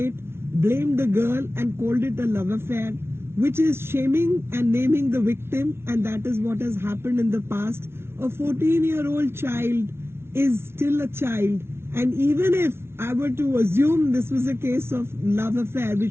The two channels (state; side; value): late; left; 0.12 ms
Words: blamed the girl and called it a love affair, which is shaming and naming the victim, and that is what has happened in the past. A 14-year-old child is still a child, and even if I were to assume this was a case of love affair,